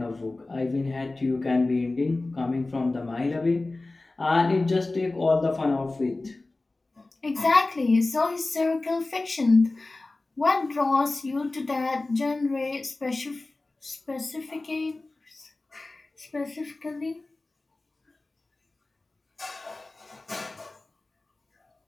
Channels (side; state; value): right; quieter; 3.1 dB